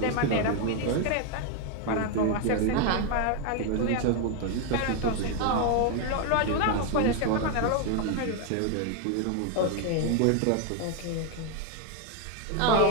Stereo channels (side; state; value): both; different; correlation 0.01